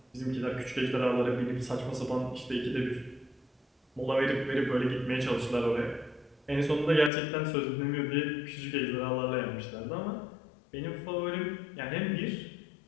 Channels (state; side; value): drops out; right; at 7.1 s